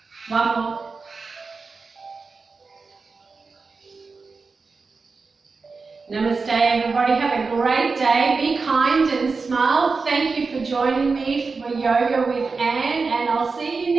1 more. Namaste everybody, have a great day, be kind and smile. Thank you for joining me for Yoga with Anne, and I'll see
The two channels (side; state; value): left; quieter; 4.4 dB